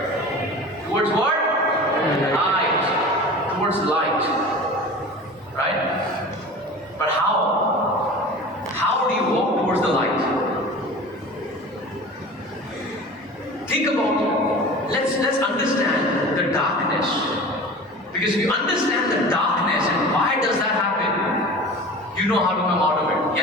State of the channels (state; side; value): normal; both; correlation 0.37